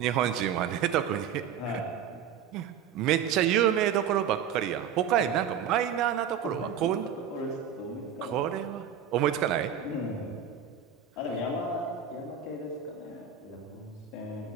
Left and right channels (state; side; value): quieter; left; 8.1 dB